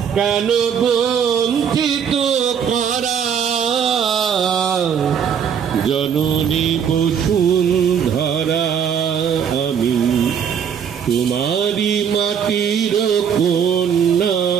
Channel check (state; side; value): quieter; left; 7.7 dB